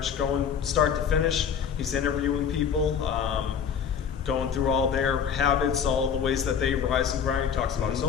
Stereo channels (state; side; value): quieter; right; 7.4 dB